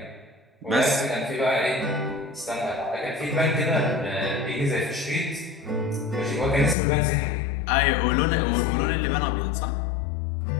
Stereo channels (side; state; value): right; drops out; at 6.8 s